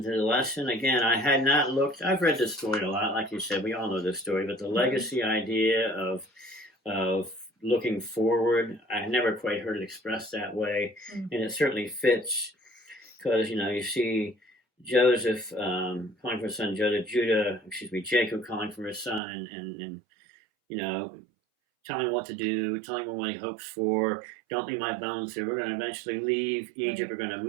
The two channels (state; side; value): drops out; left; at 19.2 s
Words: the lesson. Again, I had not looked. I've read this story a lot, like you said. We all know this story, but the legacy idea of looking forward, I never quite heard it expressed that way, and it certainly fits because you see Joseph calling for his son Jacob calling for his son, and telling him what to do, telling him what he hopes for. Don't leave my bones here. We're going to eventually leave Egypt. We're going to